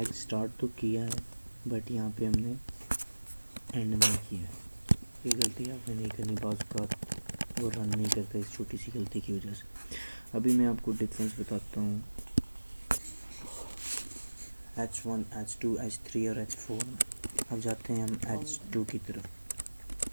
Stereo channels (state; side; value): inverted; both; correlation -1.00